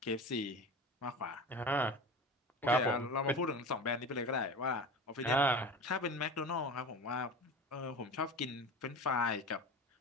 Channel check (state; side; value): normal; both; correlation 0.32